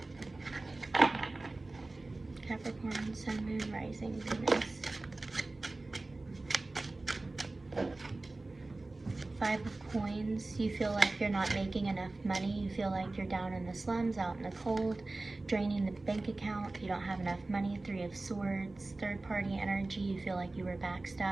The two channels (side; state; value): left; quieter; 3.1 dB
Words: Capricorn, Sun, Moon, Rising, Venus. 5 of coins. You feel like you're not making enough money. You feel like you're down in the slums, out in the cold, draining the bank account. You don't have enough money. 3 of swords. Third party energy. You feel like you were